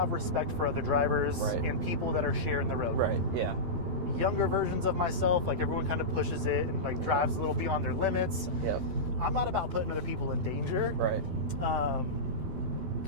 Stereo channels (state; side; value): late; left; 12 ms